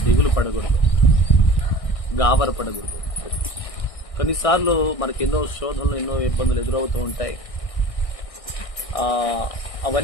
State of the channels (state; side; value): late; right; 1.6 ms